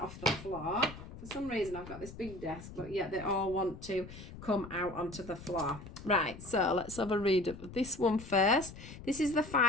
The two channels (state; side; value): noise; left; rumble, 14 dB below the sound